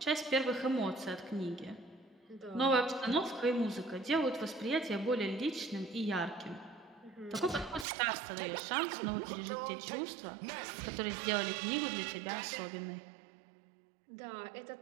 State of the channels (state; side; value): drops out; left; at 7.9 s